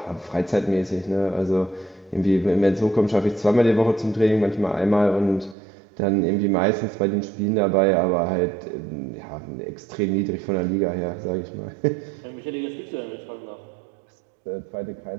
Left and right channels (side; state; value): left; drops out; at 5.6 s